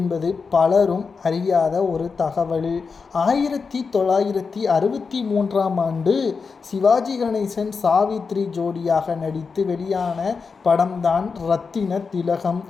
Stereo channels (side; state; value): right; quieter; 5.1 dB